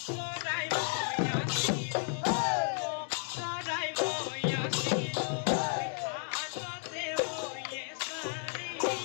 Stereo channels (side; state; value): right; silent; 56 dB below the other